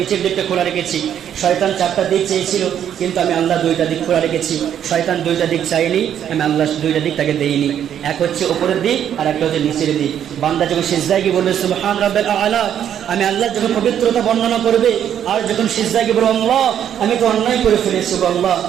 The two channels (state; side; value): quieter; left; 9.6 dB